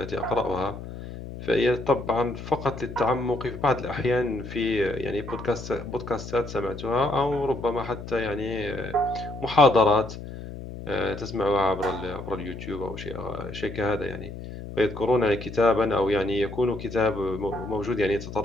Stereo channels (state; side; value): noise; left; hum, 10 dB below the sound